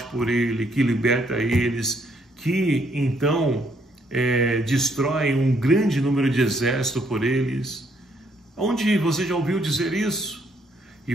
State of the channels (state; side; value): normal; both; correlation 0.70